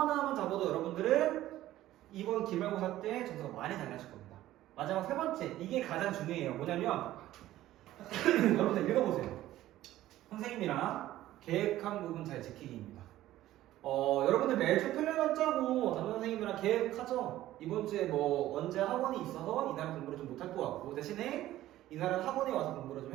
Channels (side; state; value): left; quieter; 14.5 dB